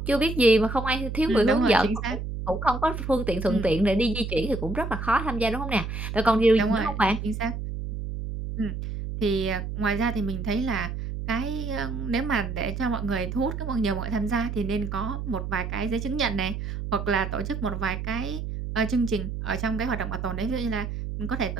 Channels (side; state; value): right; noise; hum, 5 dB below the sound